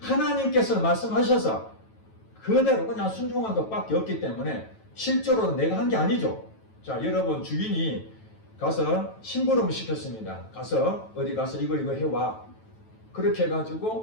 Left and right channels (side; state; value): right; late; 9.2 ms